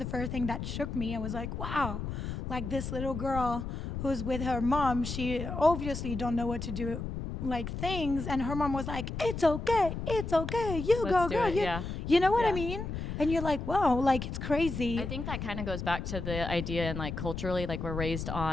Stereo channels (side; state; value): left; noise; rumble, 5 dB below the sound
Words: first thing that shook me. I was like, wow, like this little girl who's with her mom, she obviously don't know what to do, like things. And her mom was like, it's okay, you Let's go, do girl. it, yeah. You know what I Yeah. mean? And you're like, wow, like it's crazy. I think that kind of goes back to the idea and like culturally, like we're raised